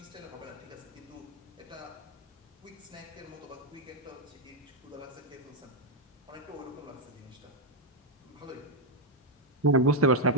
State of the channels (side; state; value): both; normal; correlation 0.02